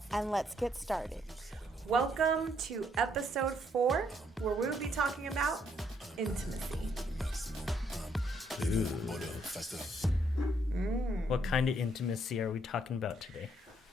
and let's get started. Welcome to episode 4, where we will be talking about intimacy. What kind of intimacy are we talking about today?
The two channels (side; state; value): both; normal; correlation 0.71